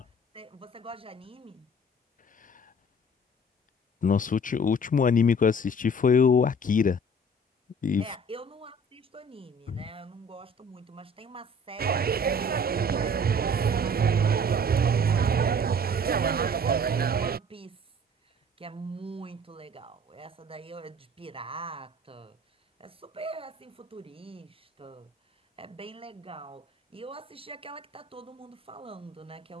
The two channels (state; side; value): normal; both; correlation 0.50